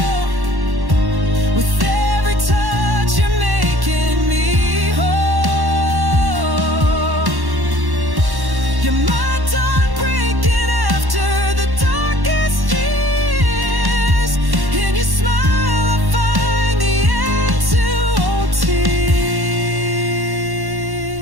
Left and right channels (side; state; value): left; late; 1.1 ms